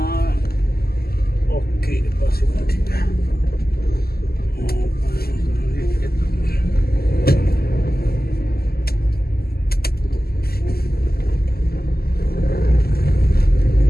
ओके बस ठीक है।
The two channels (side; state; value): right; late; 0.45 ms